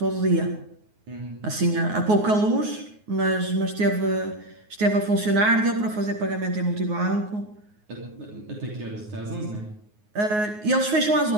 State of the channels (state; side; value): late; left; 9.5 ms